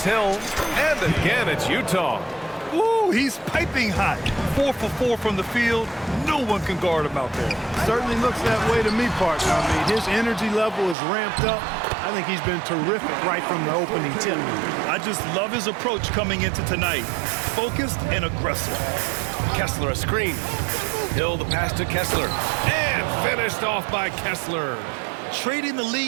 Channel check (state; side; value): drops out; left; at 11.0 s